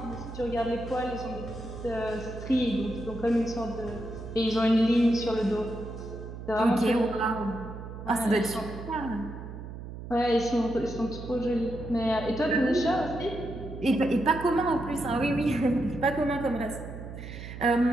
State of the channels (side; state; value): right; noise; hum, 11 dB below the sound